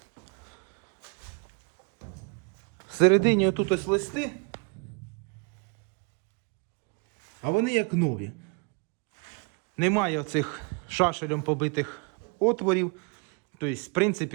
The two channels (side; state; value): left; quieter; 33.5 dB